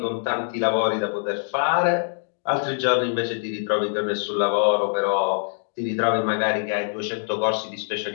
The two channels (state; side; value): silent; right; digital silence